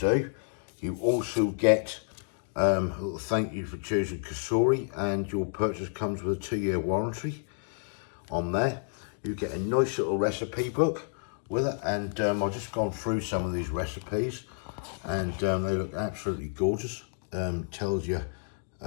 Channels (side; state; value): right; silent; 58 dB below the other